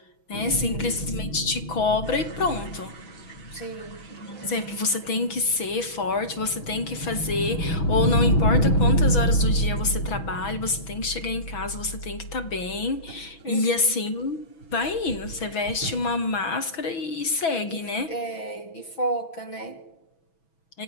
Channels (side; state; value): right; late; 6.1 ms